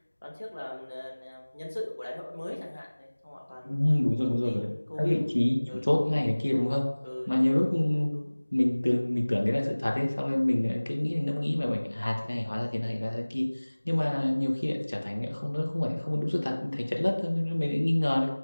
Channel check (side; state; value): both; inverted; correlation -1.00